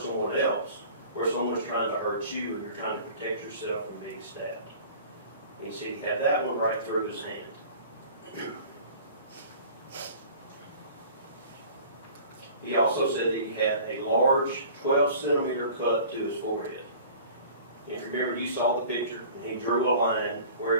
someone else, where someone's trying to hurt you and you're trying to protect yourself from being stabbed. And he said he had that one right through his hand. He also said that he had a large 12-centimeter cut to his forehead. And if you remember, you saw the picture, and he drew a line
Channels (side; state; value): both; inverted; correlation -0.45